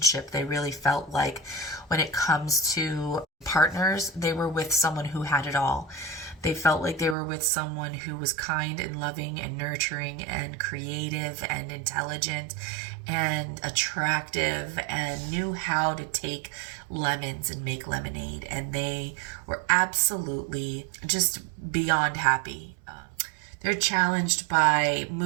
They really felt like when it comes to partners, they were with someone who had it all. They felt like they were with someone who was kind and loving and nurturing and creative and intelligent and attractive and knew how to take lemons and make lemonade. And they were absolutely just beyond happy. They're challenged by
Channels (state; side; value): drops out; left; at 7.2 s